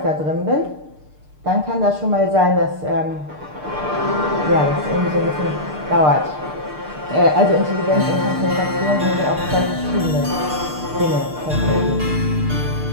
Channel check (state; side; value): late; left; 6.6 ms